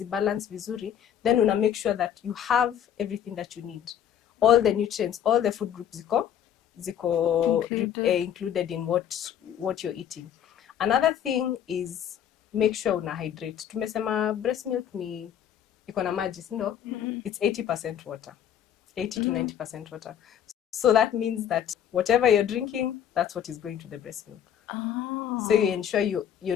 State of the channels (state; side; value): quieter; right; 9.5 dB